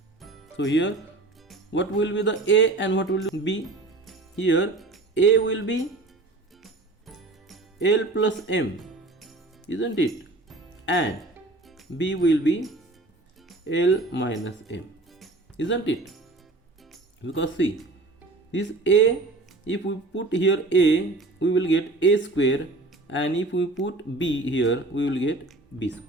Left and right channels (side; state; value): left; quieter; 3.1 dB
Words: So here what will be the a and what will be b? Here a will be L plus m, isn't it? And b will be L minus m, isn't it? because see, this a, if we put here a, we will get a square, and if we put b here, we will get b